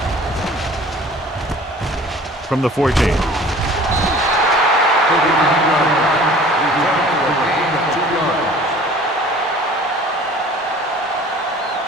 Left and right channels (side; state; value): both; normal; correlation 0.47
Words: From the 14.